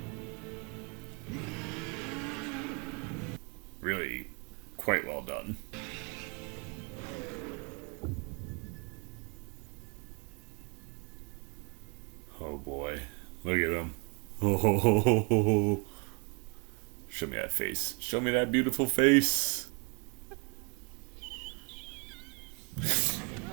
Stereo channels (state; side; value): quieter; left; 32.8 dB